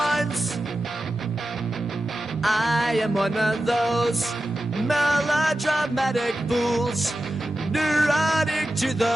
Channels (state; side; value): normal; both; correlation 0.92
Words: I am one of those melodramatic fools, neurotic to